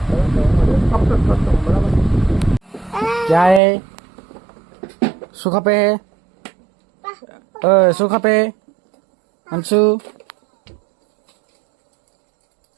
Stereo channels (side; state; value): left; drops out; at 3.6 s